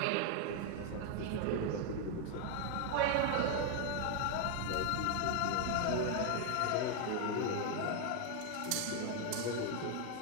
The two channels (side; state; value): both; different; correlation 0.01